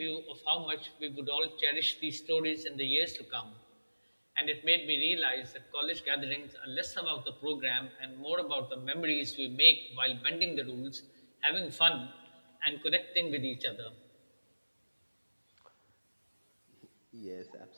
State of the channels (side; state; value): both; inverted; correlation -1.00